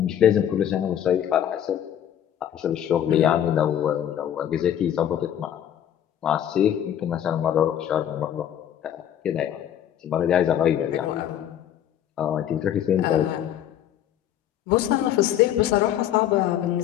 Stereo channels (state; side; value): quieter; right; 10.4 dB